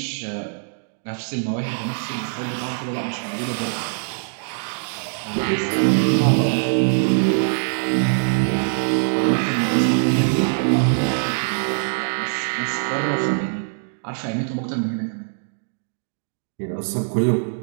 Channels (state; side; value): silent; left; digital silence